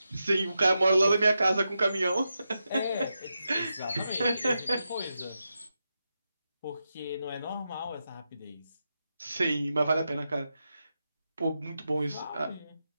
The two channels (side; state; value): both; inverted; correlation -0.88